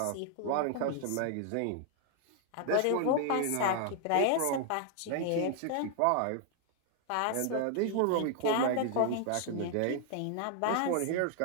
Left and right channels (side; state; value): both; different; correlation 0.00